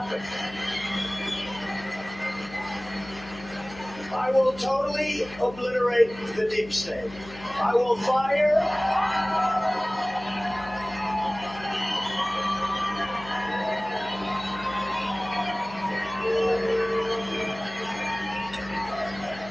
I will totally obliterate the deep state. I will fire.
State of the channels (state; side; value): noise; left; hum, 17 dB below the sound